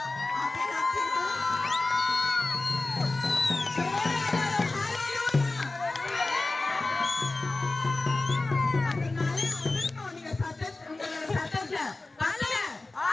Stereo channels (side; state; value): right; quieter; 3.2 dB